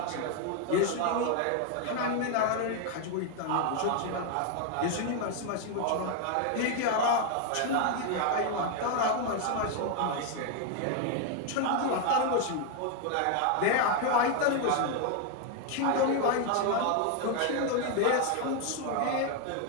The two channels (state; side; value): different; both; correlation 0.01